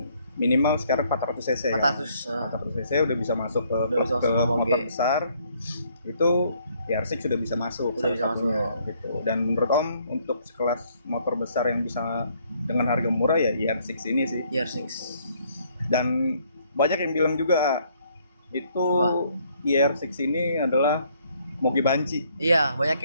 minimal sekarang 400 cc 400. kan. 400 cc udah bisa masuk ke Udah bisa klub, ke masuk ke motor moge. besar. Itu ER6 sudah bisa masuk Sudah salah bisa satunya, gitu. Dan menurut Om untuk sekelas motor besar yang bisa dengan harga murah ya ER6 ini sih. ER6. Dan banyak yang bilang juga itu Wah. ER6 ini adalah moge banci. Iya, banyak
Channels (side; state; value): both; inverted; correlation -0.66